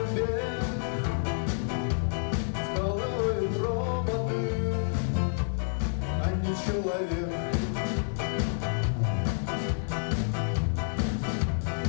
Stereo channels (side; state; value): right; silent; 57 dB below the other